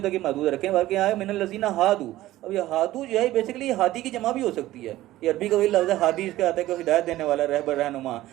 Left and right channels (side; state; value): left; quieter; 15.7 dB